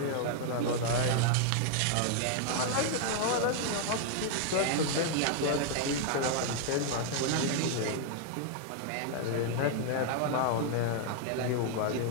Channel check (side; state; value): both; different; correlation 0.00